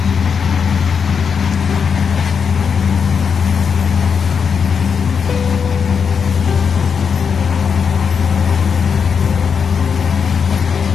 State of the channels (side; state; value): right; quieter; 6.4 dB